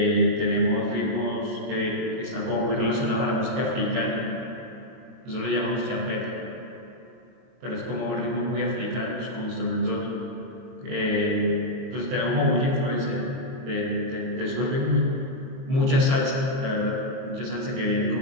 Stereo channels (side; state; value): left; late; 22 ms